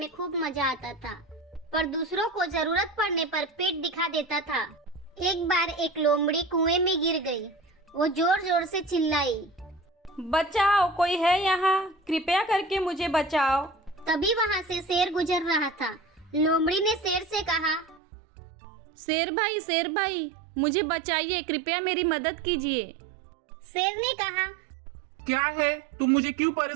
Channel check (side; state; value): left; drops out; at 18.0 s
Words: खूब मजा आता था, पर दूसरों को जरूरत पड़ने पर पीठ दिखा देता था। एक बार एक लोमड़ी कुएं में गिर गई। वो जोर जोर से चिल्लाई, बचाओ, कोई है यहाँ? कृपया करके मुझे बचाओ। तभी वहाँ से शेर गुजर रहा था। लोमड़ी ने शेर से कहा, शेर भाई, मुझे बचाइए, कृपया मेरी मदद कीजिए। शेर ने कहा, क्या है, तुम मुझे क्यों